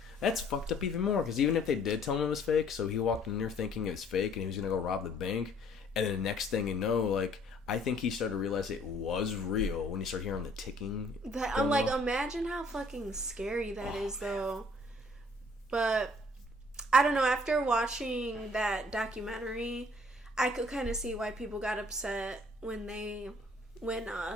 That's fucked up even more, because even if they did tell him it was fake, so he walked in there thinking it was fake, and he was going to go rob the bank, and then the next thing you know, like, I think he started to realize it was real when he started hearing the ticking. I'm like, imagine how fucking scary that is, though. But, I don't know, after watching that documentary... I could kind of see why people got upset when 30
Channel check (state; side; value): normal; both; correlation 0.59